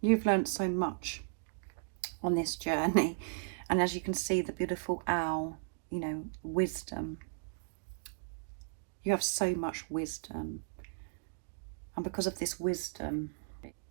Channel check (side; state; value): left; silent; digital silence